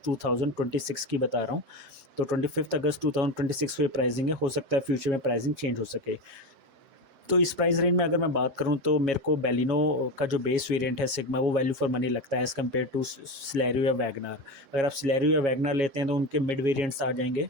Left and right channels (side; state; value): left; late; 7.3 ms